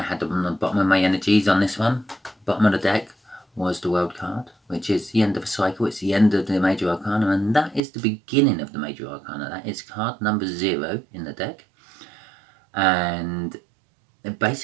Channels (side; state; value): left; drops out; at 7.8 s